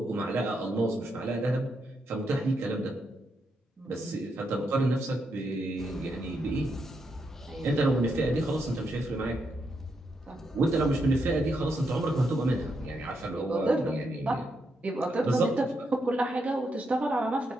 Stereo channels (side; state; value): both; normal; correlation 0.81